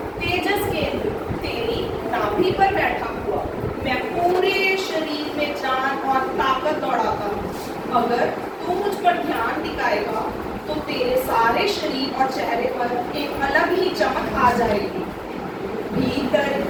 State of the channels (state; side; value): identical; both; correlation 1.00